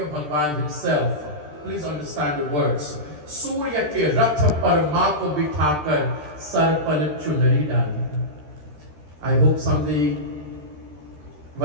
Bhagwan himself. Please understand the words. Surya ke rath par maa ko bithakar, sar par chunari dali. I hope someday,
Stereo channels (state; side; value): late; left; 13 ms